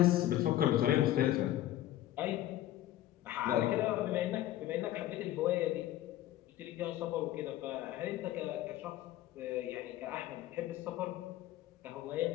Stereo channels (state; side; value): quieter; right; 13.8 dB